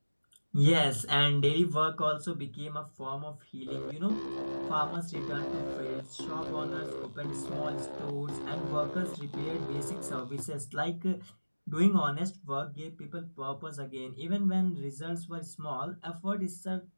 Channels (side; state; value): both; inverted; correlation -1.00